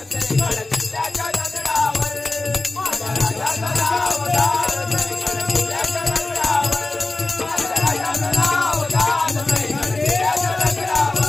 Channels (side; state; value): right; quieter; 3.1 dB